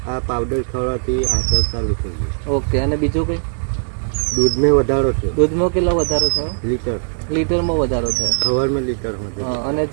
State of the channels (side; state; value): left; silent; 67 dB below the other